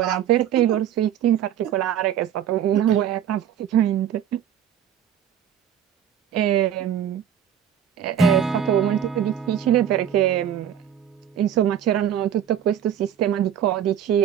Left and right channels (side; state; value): left; quieter; 9.5 dB